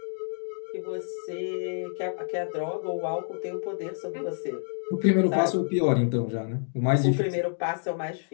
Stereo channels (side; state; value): right; silent; digital silence